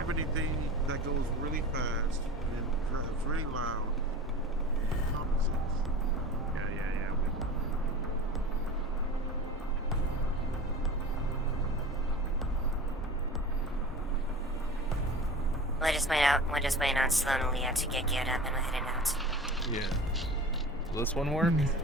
anything that goes really fast and then drives really loud? Common sense. Yeah. We're just waiting on Sloan and Leah to get geared up and we're heading out. Yeah. Will this one work?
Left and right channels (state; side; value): normal; both; correlation 0.36